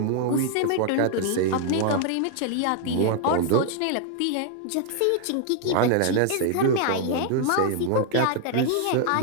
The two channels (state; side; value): different; both; correlation 0.00